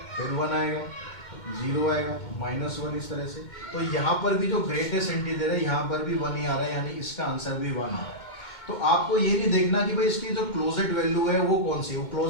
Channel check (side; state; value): right; late; 2.2 ms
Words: फिर 1 आएगा। जीरो आएगा, -1 इस तरह से। तो यहाँ पर भी जो ग्रेटेस्ट इंटीजर है यहाँ पर भी 1 ही आ रहा है, यानी इसका आंसर भी 1 आ रहा है। तो आपको ये नहीं देखना कि भाई इसकी जो क्लोजेड वैल्यू है वो कौन सी, वो